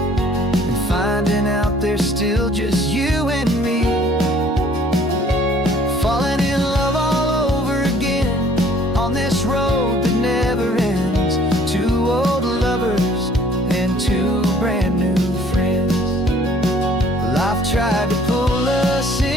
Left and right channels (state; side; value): normal; both; correlation 0.56